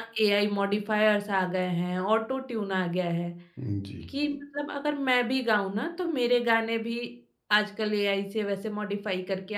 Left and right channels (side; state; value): both; identical; correlation 1.00